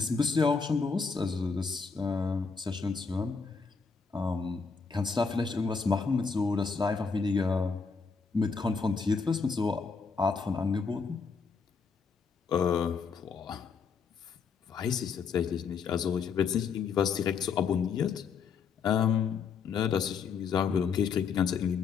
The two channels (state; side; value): quieter; right; 5.4 dB